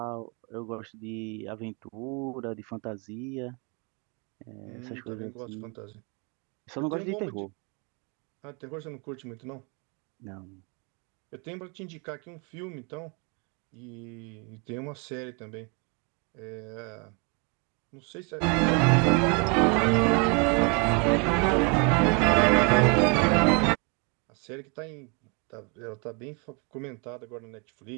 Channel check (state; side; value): quieter; left; 33.2 dB